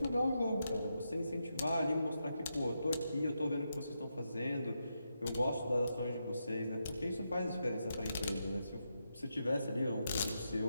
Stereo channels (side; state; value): both; inverted; correlation -0.85